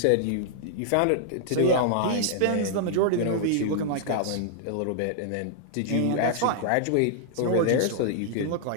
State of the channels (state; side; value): different; both; correlation -0.01